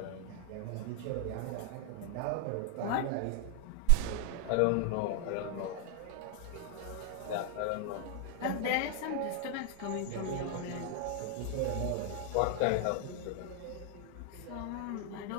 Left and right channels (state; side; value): different; both; correlation 0.00